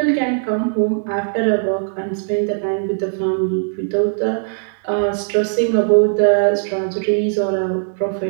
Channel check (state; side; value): silent; left; digital silence